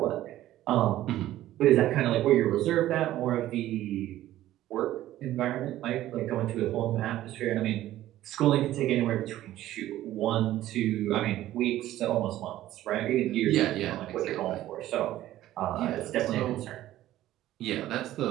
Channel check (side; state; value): left; quieter; 14.1 dB